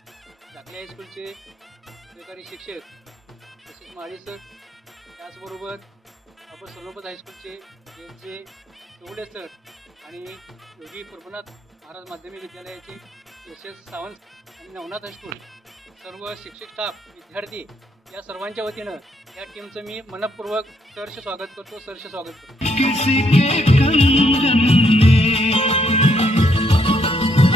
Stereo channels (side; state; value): both; normal; correlation 0.72